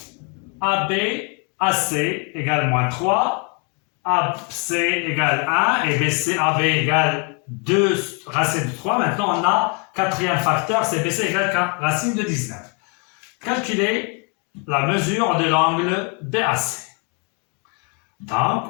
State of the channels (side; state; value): right; quieter; 35.2 dB